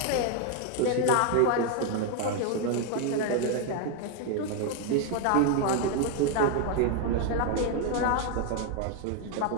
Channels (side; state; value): both; different; correlation 0.01